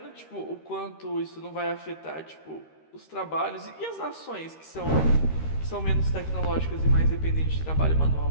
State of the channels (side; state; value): right; late; 13 ms